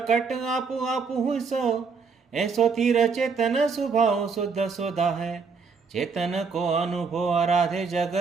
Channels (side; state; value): left; quieter; 5.1 dB